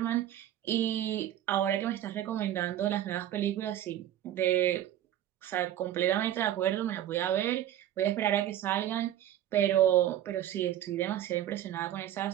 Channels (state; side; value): quieter; left; 12.0 dB